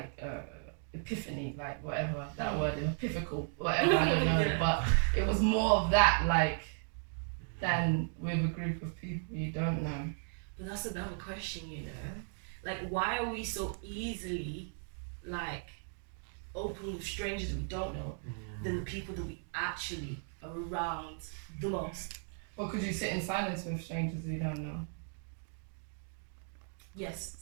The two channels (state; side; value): silent; left; 54 dB below the other